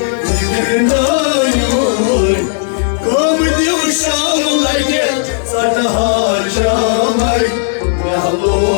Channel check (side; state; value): right; silent; digital silence